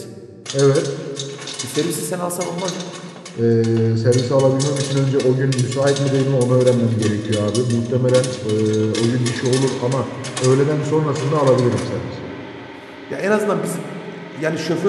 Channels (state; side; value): identical; both; correlation 1.00